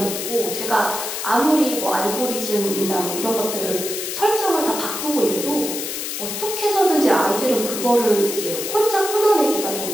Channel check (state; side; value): noise; left; hiss, 5 dB below the sound